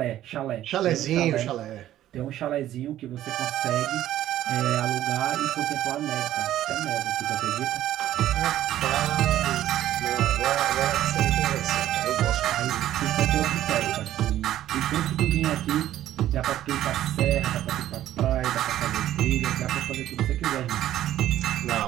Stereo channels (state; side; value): quieter; left; 12.8 dB